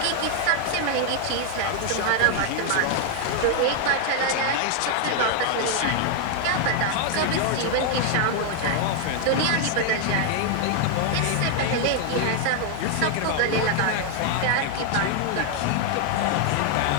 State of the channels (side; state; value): both; different; correlation 0.00